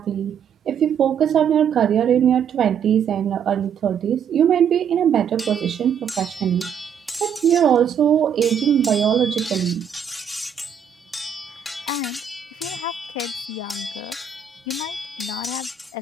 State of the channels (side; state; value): left; quieter; 7.6 dB